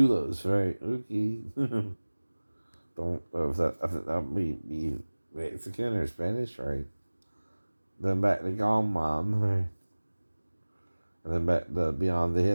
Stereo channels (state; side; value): inverted; both; correlation -1.00